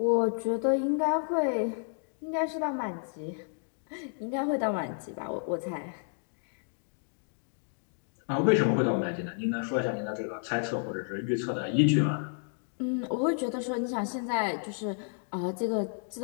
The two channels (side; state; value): right; silent; 57 dB below the other